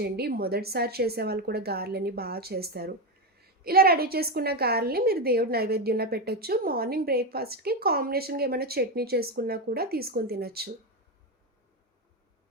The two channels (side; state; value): both; normal; correlation 0.11